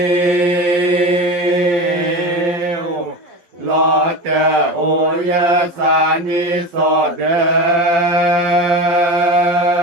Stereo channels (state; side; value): late; left; 11 ms